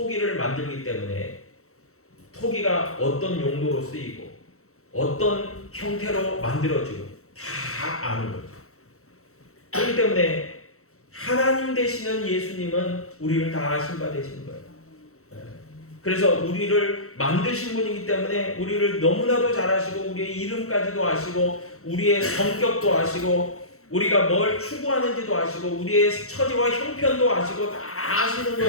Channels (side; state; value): right; late; 0.64 ms